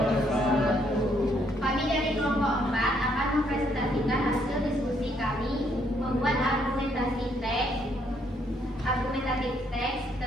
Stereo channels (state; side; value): normal; both; correlation 0.70